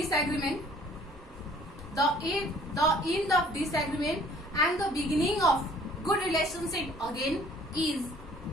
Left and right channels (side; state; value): both; normal; correlation 0.56